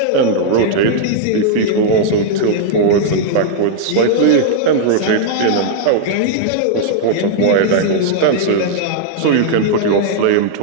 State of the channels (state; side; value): different; both; correlation -0.01